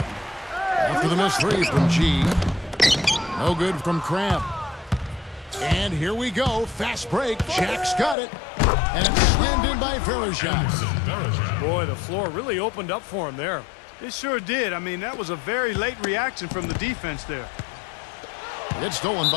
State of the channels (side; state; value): right; drops out; at 8.2 s